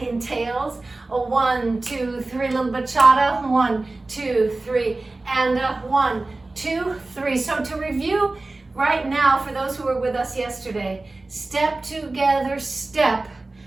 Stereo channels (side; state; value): left; quieter; 3.2 dB